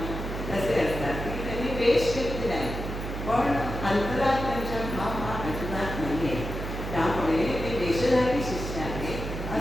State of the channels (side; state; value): right; noise; hum, 6 dB below the sound